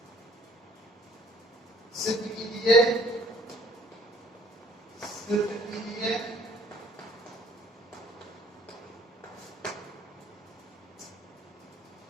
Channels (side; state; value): both; normal; correlation 0.58